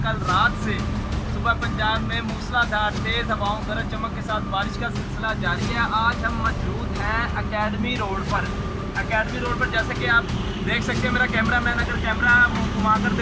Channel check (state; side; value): identical; both; correlation 1.00